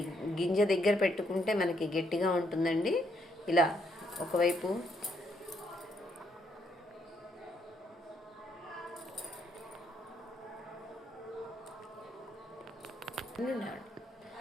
గింజ దగ్గర పెట్టుకుంటే మనకి గట్టిగా ఉంటుందండి. ఇలా ఒకవైపు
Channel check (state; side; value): normal; both; correlation 0.74